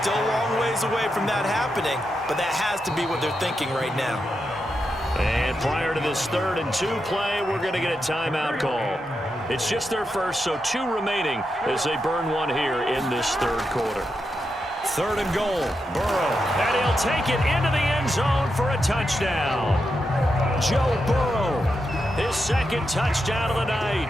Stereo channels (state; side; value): normal; both; correlation 0.86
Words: a long ways away from that happening, but that has to be what they're thinking right now. And prior to this 3rd and 2 play, we're going to get a timeout call. It's just their first, so 2 remaining as they burn one here in this 3rd quarter. 3rd and goal, Burrow, and he'll take it into the end end zone for a touchdown. Joe Burrow, his second touchdown of the night.